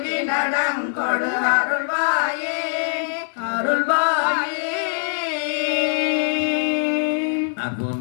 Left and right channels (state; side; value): silent; right; 61 dB below the other